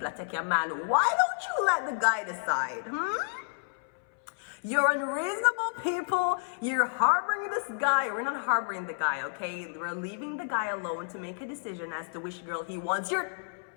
are taking a man, why don't you let the guy decide? You're unreasonable people. You're harboring this guy. We're not harboring the guy, okay? We're leaving the guy alone to make a decision as to which girl he wants. You're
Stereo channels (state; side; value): silent; right; 58 dB below the other